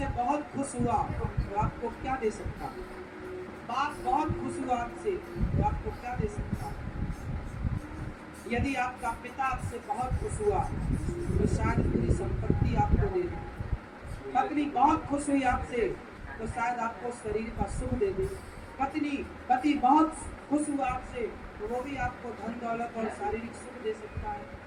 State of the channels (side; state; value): both; identical; correlation 1.00